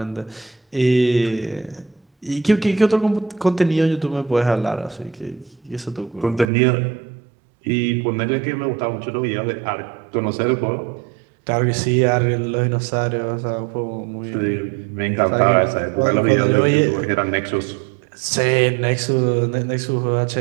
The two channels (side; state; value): left; drops out; at 6.5 s